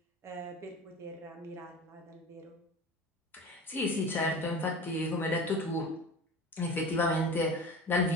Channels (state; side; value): normal; both; correlation 0.34